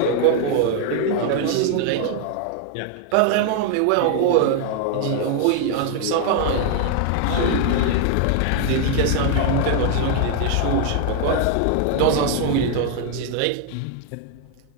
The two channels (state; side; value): different; both; correlation 0.00